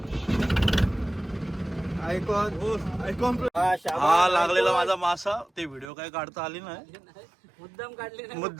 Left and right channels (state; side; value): drops out; left; at 5.9 s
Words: आयकॉन हा लागलेला माझा मासा. ते व्हिडिओ काय काढता आली नाही. मुद्दाम